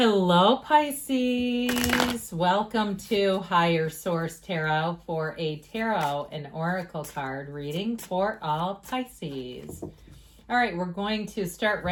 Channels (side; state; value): both; identical; correlation 1.00